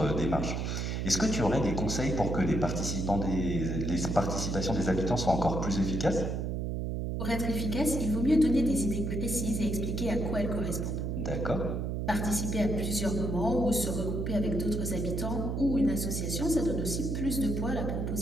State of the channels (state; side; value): noise; right; hum, 1 dB below the sound